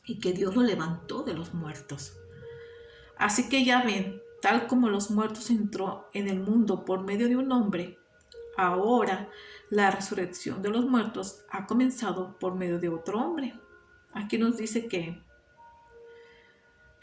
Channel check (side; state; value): both; identical; correlation 1.00